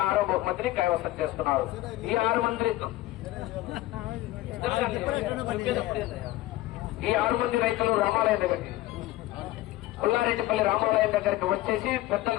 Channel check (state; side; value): quieter; right; 16.9 dB